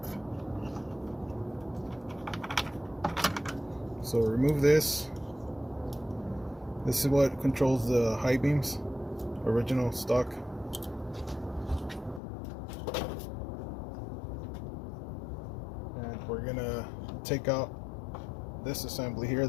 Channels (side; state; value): right; drops out; at 12.2 s